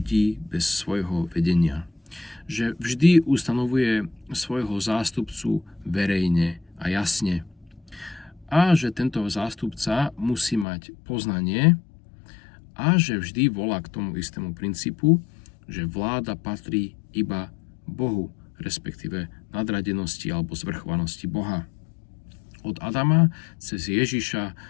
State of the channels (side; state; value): right; drops out; at 10.7 s